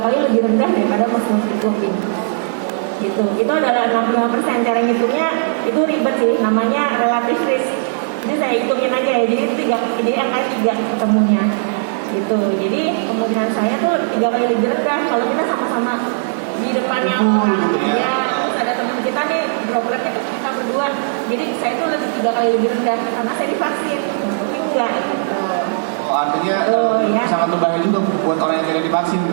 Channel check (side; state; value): left; silent; digital silence